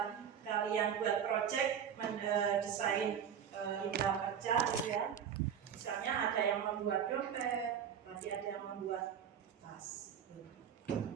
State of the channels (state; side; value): quieter; left; 8.3 dB